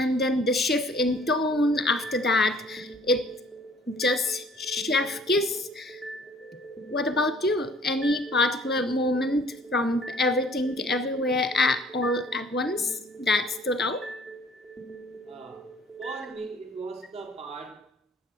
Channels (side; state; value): both; normal; correlation 0.56